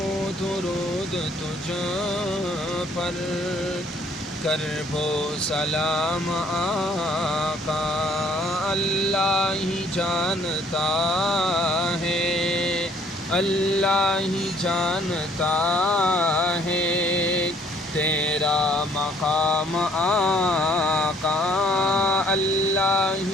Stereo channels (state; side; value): normal; both; correlation 0.61